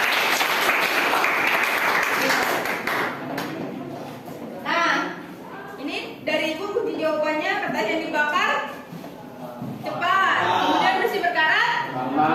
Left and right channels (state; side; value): identical; both; correlation 1.00